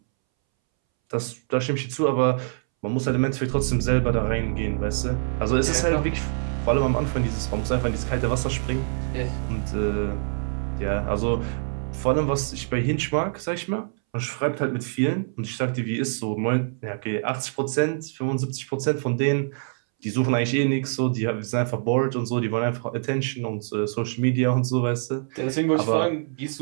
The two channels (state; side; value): silent; left; 62 dB below the other